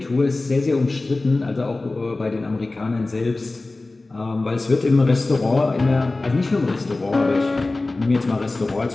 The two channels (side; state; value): right; quieter; 3.2 dB